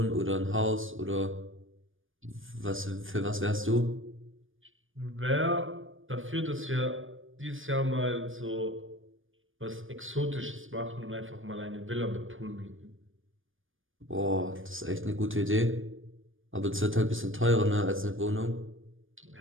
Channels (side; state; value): left; late; 0.58 ms